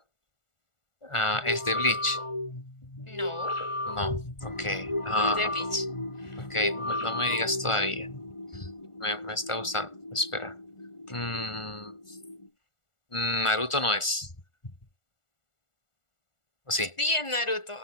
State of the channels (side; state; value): right; late; 1.4 ms